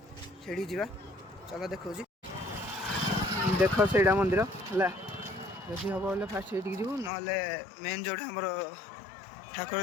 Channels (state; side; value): drops out; right; at 7.1 s